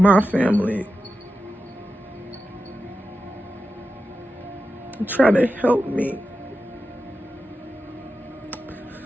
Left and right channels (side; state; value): both; normal; correlation 0.91